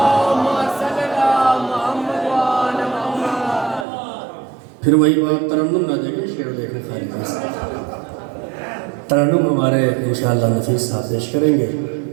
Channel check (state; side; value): drops out; left; at 3.9 s